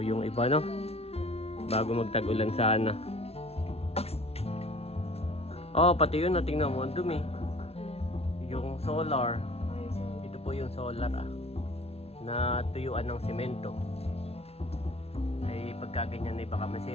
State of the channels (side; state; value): right; late; 0.30 ms